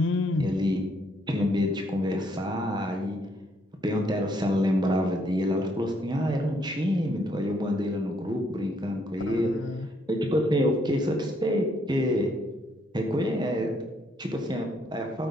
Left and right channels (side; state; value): both; normal; correlation 0.71